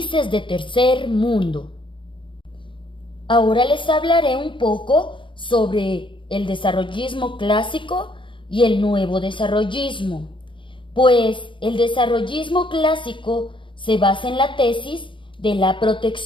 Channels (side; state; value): right; late; 0.24 ms